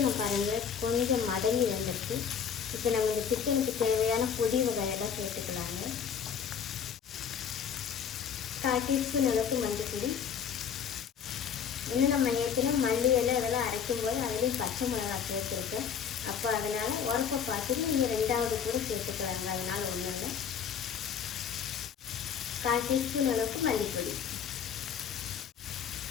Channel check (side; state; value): right; quieter; 7.5 dB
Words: பாருங்கள் கொஞ்சம் மடங்கி வந்துடுச்சு. இப்போ நம்ம இந்த சிக்கனுக்கு தேவையான பொடி வகையெல்லாம் சேர்த்துக்கலாங்க. 1/4 டீஸ்பூன் அளவுக்கு மஞ்சள். இன்னும் நம்ம ஏற்கனவே மல்லி இலை இதெல்லாம் அரைக்கும்போது அதுலேயும் பச்சை மிளகாய் சேர்த்துருக்கேன். அப்போ அதனால் உரப்பை பார்த்துட்டு நீங்கள் 2வது கூட சேர்த்துக்கலாங்க, அதனால் ஒன்றும் இல்லை. 1/4 டீஸ்பூன் அளவுக்கு மல்லிப்பொடி,